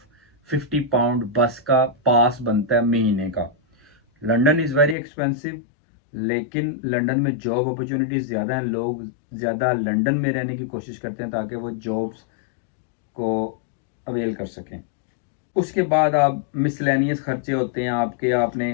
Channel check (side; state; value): right; drops out; at 5.0 s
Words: 50 पाउंड बस का पास बनता है महीने का। लंदन इज़ वेरी एक्सपेंसिव, लेकिन लंदन में जॉब अपॉर्चुनिटीज़ ज़्यादा हैं, लोग ज़्यादा लंदन में रहने की कोशिश करते हैं ताकि वो जॉब्स को अवेल कर सकें। उसके बाद आप मिसलेनियस खर्चे होते हैं आपके,